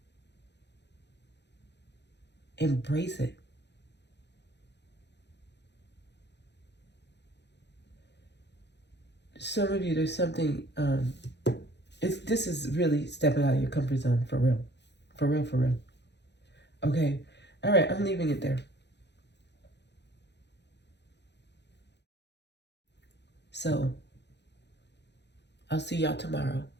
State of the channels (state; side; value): late; right; 0.50 ms